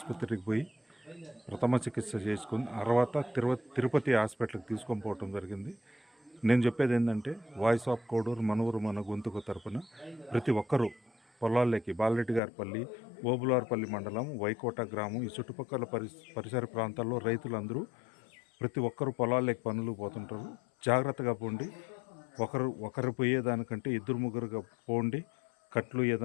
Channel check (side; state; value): right; drops out; at 12.4 s